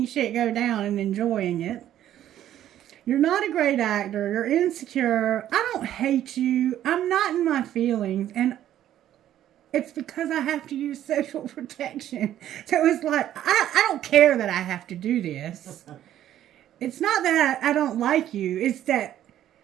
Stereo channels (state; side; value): quieter; left; 11.8 dB